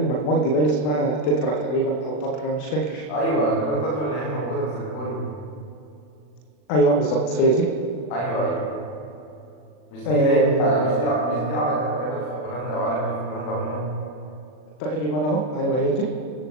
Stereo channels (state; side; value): late; right; 40 ms